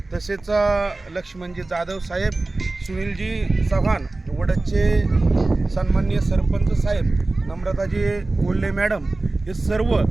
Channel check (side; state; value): left; quieter; 3.1 dB